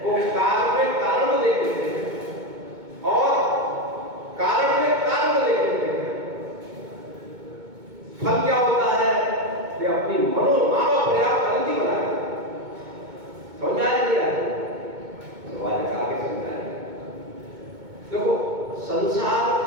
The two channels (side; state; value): left; late; 2.2 ms